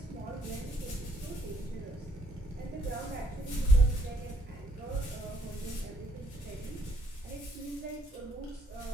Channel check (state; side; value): normal; both; correlation 0.71